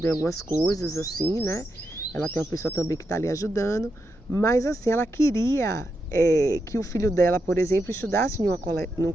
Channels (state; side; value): normal; both; correlation 0.85